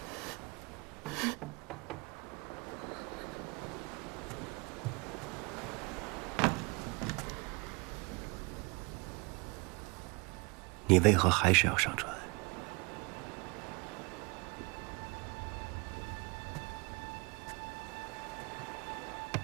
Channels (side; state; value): left; quieter; 29.1 dB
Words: 你为何还是要上船？